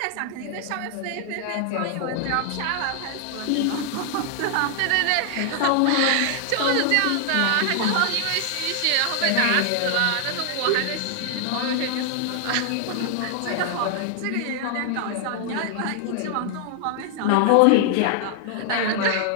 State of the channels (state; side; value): different; both; correlation 0.00